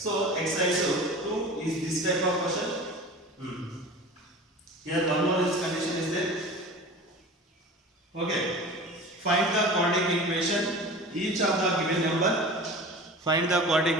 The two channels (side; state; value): both; normal; correlation 0.37